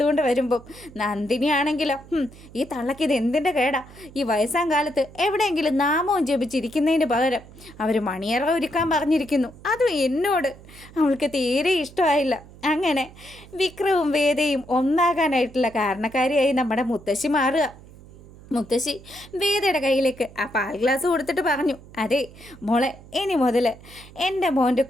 വരുമ്പം നന്ദിനിയാണെങ്കിലോ, ഈ തള്ളക്ക് ഇത് എന്തിൻ്റെ കേടാ? ഈ വയസ്സാം കാലത്ത് എവിടെയെങ്കിലും നാമവും ജപിച്ചിരിക്കുന്നതിന് പകരം അവർ മണിയറ ഒരുക്കാൻ പറഞ്ഞിരിക്കുന്നു. അതും എന്നോട്. അവൾക്ക് തീരെ ഇഷ്ടമായില്ല. അങ്ങനെ വിക്രവും വേദയും ഒന്നാകാനായിട്ടുള്ള കാരണക്കാരിയായി നമ്മുടെ മുത്തശ്ശി മാറുക. മുത്തശ്ശി വേദയുടെ കയ്യിലേക്ക് ആ പാൽ ഗ്ലാസ് കൊടുത്തിട്ട് പറഞ്ഞു, അതെ മോളെ, ഇനി മുതൽ എൻ്റെ മോൻ്റെ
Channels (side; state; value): right; noise; hum, 20 dB below the sound